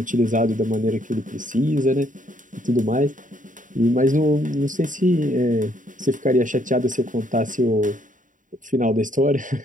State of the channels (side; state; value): left; late; 0.38 ms